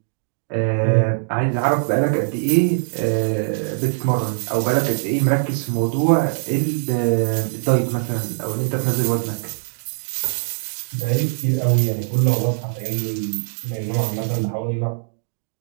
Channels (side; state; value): left; silent; digital silence